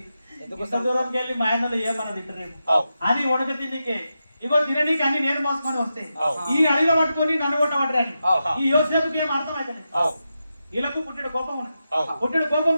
ఎంత దూరంకి వెళ్ళి మా ఆయనలో ఏమన్నా తింటారేమో అని ఉడక తిండికే ఇగో తిననీకి అన్ని నేను మోసుకొని వస్తే ఈ అడిలో పట్టుకొని నన్ను కొట్టబట్టని ఈ యోసేపుకి ఏం అర్థం అవుతుంది వీళ్ళకు పుట్టిన కోపం ఉన్నది పుట్టిన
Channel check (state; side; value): inverted; both; correlation -0.89